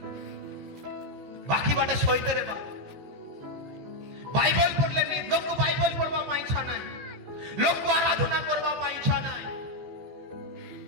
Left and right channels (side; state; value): left; late; 15 ms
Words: বাকি বাটে সইতে রে বা বাইবেল পড়লে নি লোক বাইবেল পড়বা পাই ইচ্ছা নাই, লোক আরাধনা করবা পাই ইচ্ছা নাই,